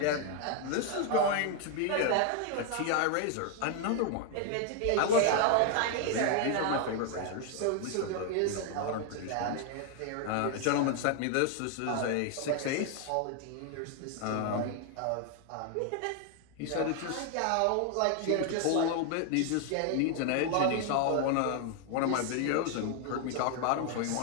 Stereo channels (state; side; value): different; both; correlation 0.00